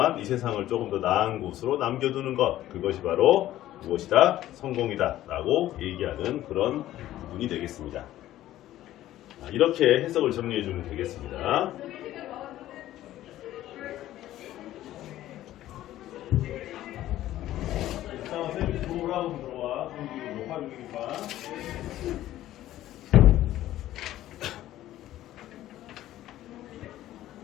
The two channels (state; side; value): quieter; right; 13.9 dB